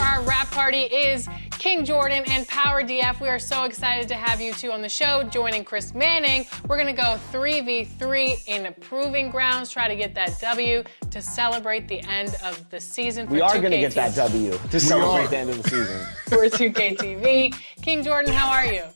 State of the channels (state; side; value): inverted; both; correlation -1.00